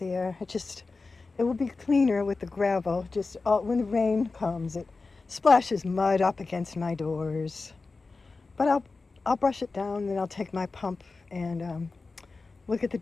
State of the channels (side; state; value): right; quieter; 3.9 dB